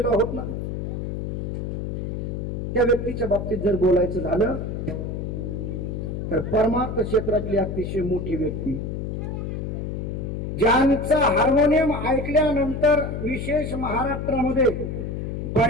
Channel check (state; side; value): noise; left; hum, 4 dB below the sound